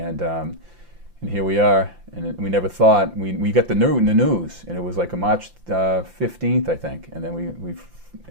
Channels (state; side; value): late; left; 5.8 ms